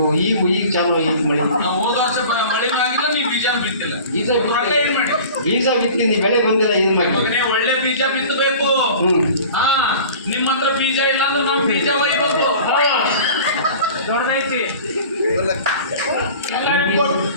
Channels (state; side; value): inverted; both; correlation -0.42